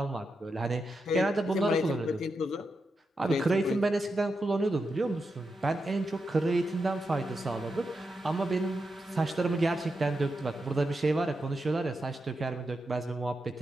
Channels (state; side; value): normal; both; correlation 0.87